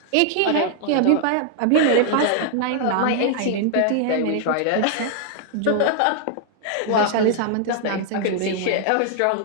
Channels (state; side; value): different; both; correlation 0.00